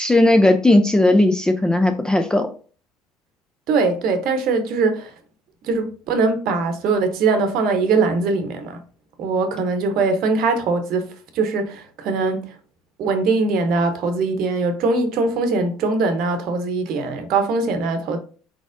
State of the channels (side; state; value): both; normal; correlation 0.62